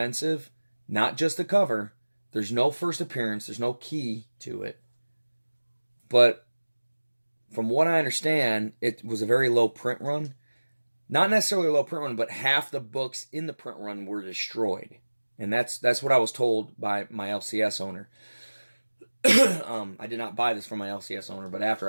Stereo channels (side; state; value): both; inverted; correlation -1.00